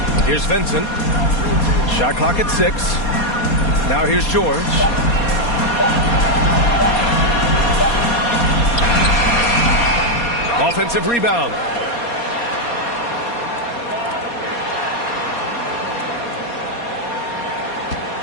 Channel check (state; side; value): late; right; 4.2 ms